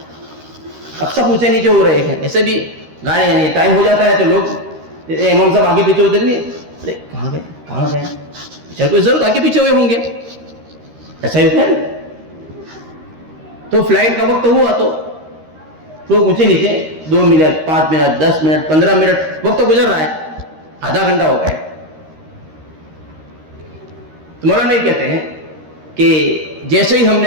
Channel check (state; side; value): late; left; 13 ms